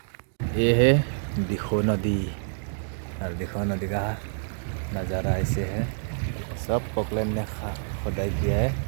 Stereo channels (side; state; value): left; silent; digital silence